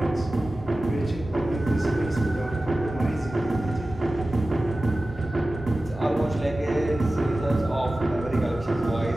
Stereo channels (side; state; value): right; noise; hum, 17 dB below the sound